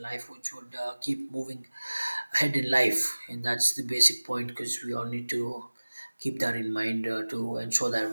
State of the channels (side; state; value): both; inverted; correlation -1.00